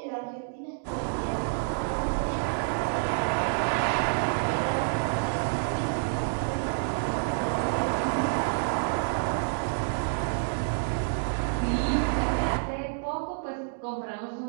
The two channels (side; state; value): left; silent; digital silence